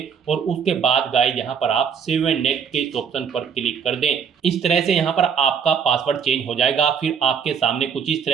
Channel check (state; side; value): quieter; left; 6.9 dB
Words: और उसके बाद गाइस यहाँ पर आप सेव एंड नेक्स्ट के इस ऑप्शन पर क्लिक कर दें। इस तरह से यहाँ पर आपका पासवर्ड चेंज हो जाएगा। फिर आपके सामने कुछ इस